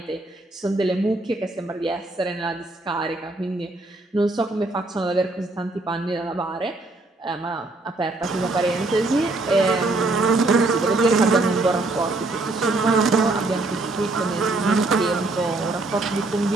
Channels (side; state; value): left; quieter; 3.1 dB